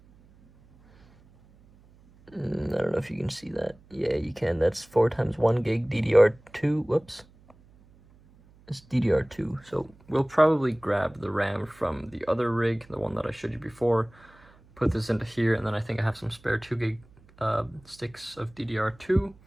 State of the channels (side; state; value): right; noise; hum, 27 dB below the sound